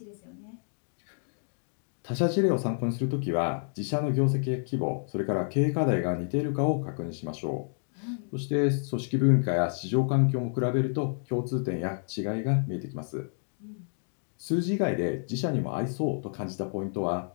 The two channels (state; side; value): silent; right; digital silence